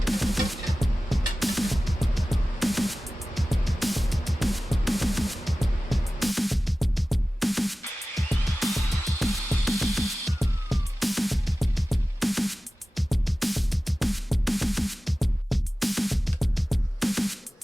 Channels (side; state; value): both; normal; correlation 0.96